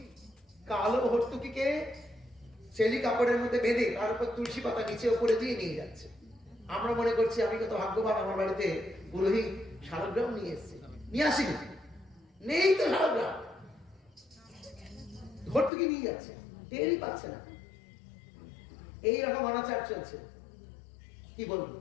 কালো হর্তুকিকে চেলি কাপড়ের মধ্যে বেঁধে তার উপর তুলসী পাতা নিচে উপরে দিয়ে নিয়ে যাচ্ছে। আমরা মনে করছি আমি কত ভাগ্যবান, আমার বাড়িতে পুরোহিত শালগ্রাম নিয়ে এসছে। নিয়ে আসিনি, নেই তো শালগ্রাম, ভর্তুকি নিয়ে যাচ্ছে, টেরই পাচ্ছে না। এইরকম অনাচার চলছে। কি বলবো,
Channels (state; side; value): drops out; right; at 15.7 s